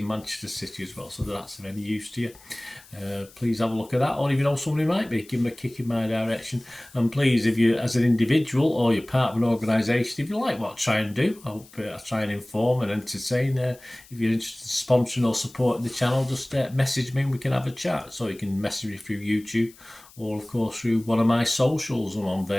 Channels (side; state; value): left; noise; hiss, 24 dB below the sound